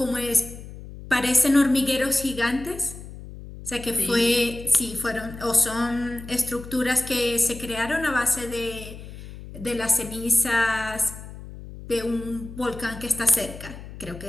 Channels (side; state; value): left; noise; hum, 14 dB below the sound